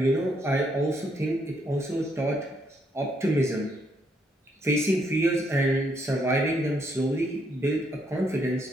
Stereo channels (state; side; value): normal; both; correlation 0.74